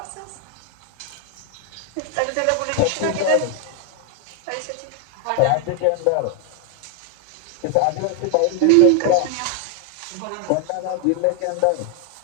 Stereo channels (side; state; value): both; different; correlation 0.00